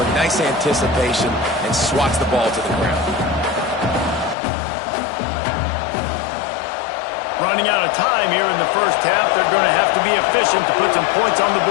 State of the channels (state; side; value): drops out; right; at 4.4 s